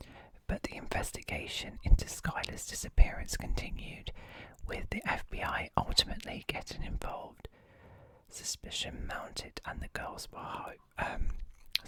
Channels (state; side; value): identical; both; correlation 1.00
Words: but the investigation into Skylar's disappearance continued, with the FBI ultimately getting involved. Suspicion mounting